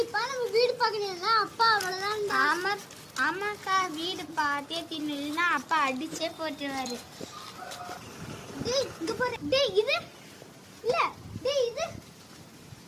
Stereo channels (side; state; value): both; identical; correlation 1.00